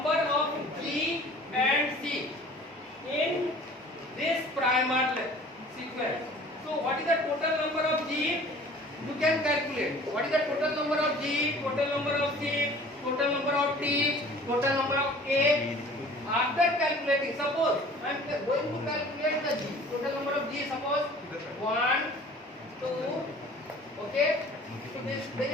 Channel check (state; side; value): normal; both; correlation 0.47